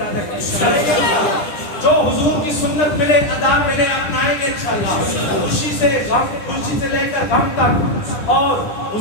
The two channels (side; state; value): right; late; 9.9 ms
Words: کریں گے انشاءاللہ۔ جو حضور کی سنت ملے، ادا ملے، اپنائیں گے انشاءاللہ۔ خوشی سے غم، خوشی سے لے کر غم تک، اور